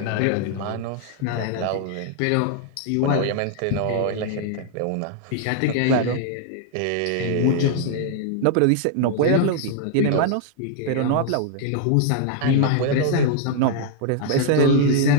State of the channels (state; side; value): different; both; correlation 0.00